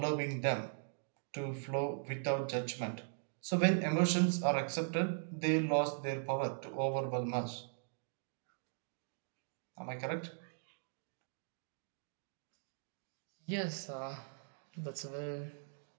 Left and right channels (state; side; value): silent; left; digital silence